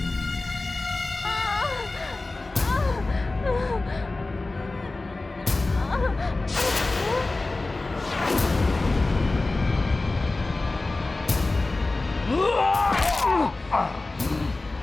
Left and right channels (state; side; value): quieter; right; 3.2 dB